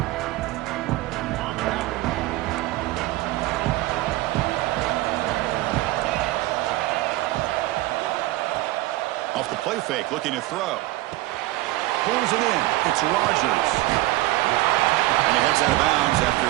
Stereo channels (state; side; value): quieter; left; 18.2 dB